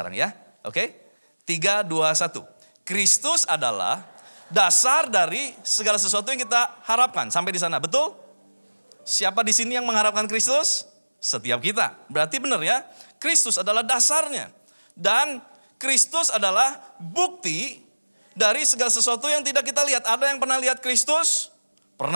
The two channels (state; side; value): inverted; both; correlation -1.00